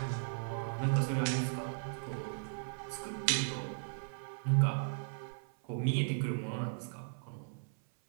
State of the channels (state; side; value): silent; left; 53 dB below the other